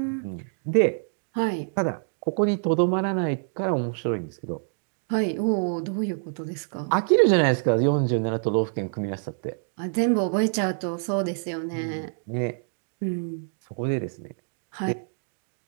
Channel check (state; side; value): silent; left; digital silence